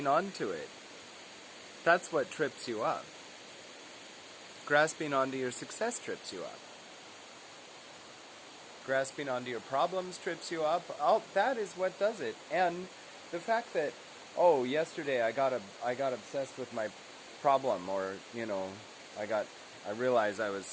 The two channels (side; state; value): both; identical; correlation 1.00